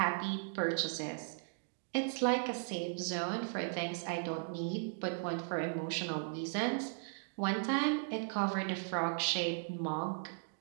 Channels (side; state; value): left; silent; digital silence